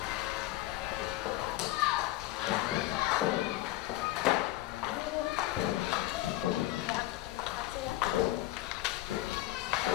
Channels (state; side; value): quieter; right; 16.6 dB